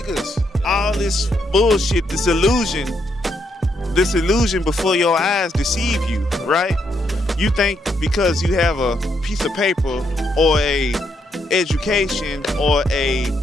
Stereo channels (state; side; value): normal; both; correlation 0.77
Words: all this bullshit, this illusion before your eyes deceive you, right? You think because you have a piece of paper or a education or a